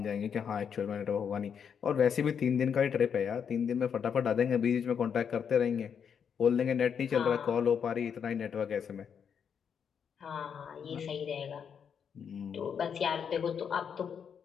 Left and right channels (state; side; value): quieter; right; 7.3 dB